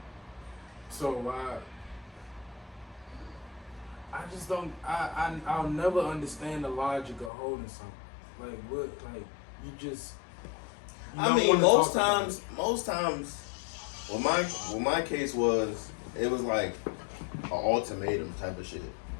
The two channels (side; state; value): right; drops out; at 7.3 s